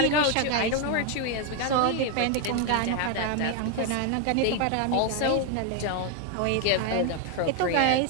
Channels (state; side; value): different; both; correlation 0.01